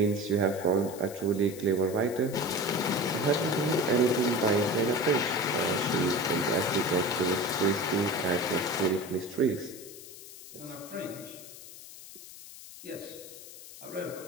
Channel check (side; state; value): left; noise; hiss, 16 dB below the sound